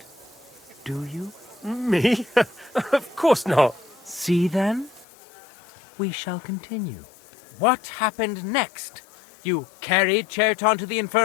do you? Me? Of course not. See then? We shall continue. What happened next? You carried Chertan to the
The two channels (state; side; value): drops out; right; at 5.1 s